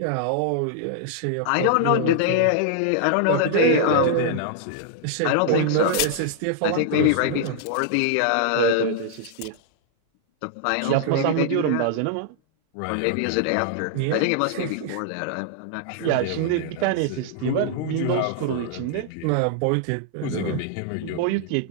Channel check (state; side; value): different; both; correlation -0.01